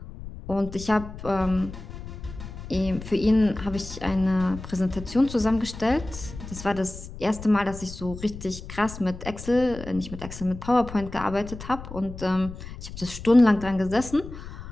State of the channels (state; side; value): noise; left; rumble, 12 dB below the sound